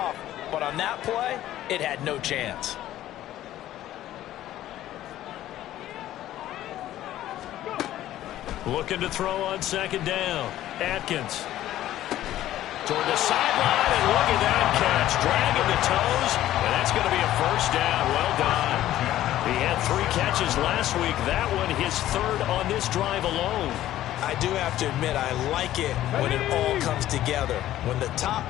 but on that play, it had no chance. Looking to throw on second down. Atkins. Toward the sideline, and look at that catch. Dragging the toes, and that's going to be a first down. Well done. He had 3 catches last week. That one his third on this drive alone. I do have to admit, I like it when it all comes together. When the top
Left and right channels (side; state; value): right; quieter; 13.5 dB